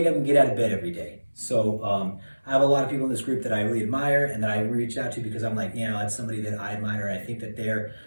up and get out of bed every day. So I have a lot of people in this group that I really admire and that I reach out to because I'm like, you know, it's somebody that I admire. I think that they're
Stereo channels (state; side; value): inverted; both; correlation -1.00